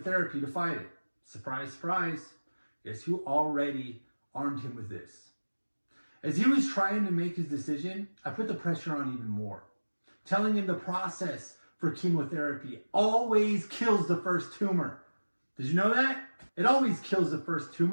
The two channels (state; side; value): inverted; both; correlation -1.00